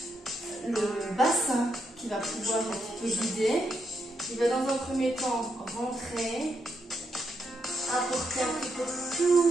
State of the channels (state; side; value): normal; both; correlation 0.80